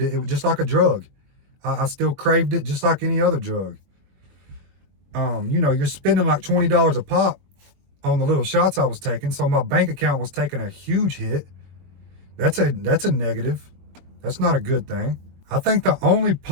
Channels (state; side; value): late; left; 22 ms